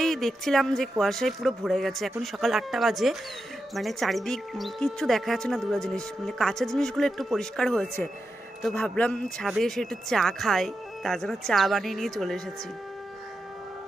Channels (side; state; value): both; normal; correlation 0.88